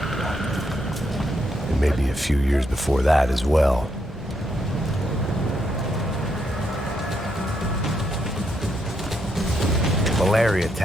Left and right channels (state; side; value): normal; both; correlation 0.78